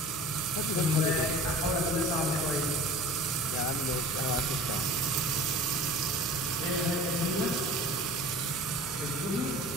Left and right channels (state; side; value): noise; left; hum, 15 dB below the sound